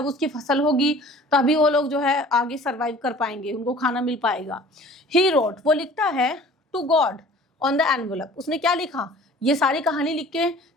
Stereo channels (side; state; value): both; normal; correlation 0.47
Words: उसकी फसल होगी तभी वो लोग जो है आगे सर्वाइव कर पाएंगे, उनको खाना मिल पाएगा। ही रोट, वो लिखता है to God on the envelope, उसने क्या लिखा? ये सारी कहानी लिख के